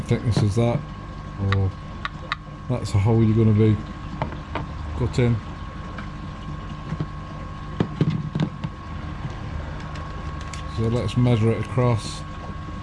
thickness as that, or that's a hole you're going to be cutting. So let's measure it across.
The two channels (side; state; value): both; identical; correlation 1.00